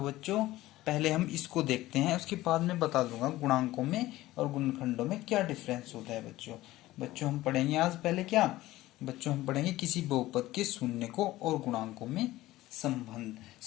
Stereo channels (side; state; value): right; quieter; 16.8 dB